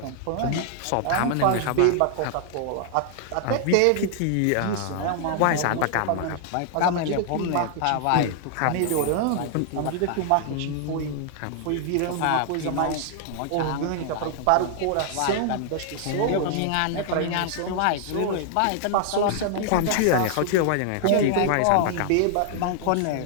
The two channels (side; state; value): both; different; correlation 0.00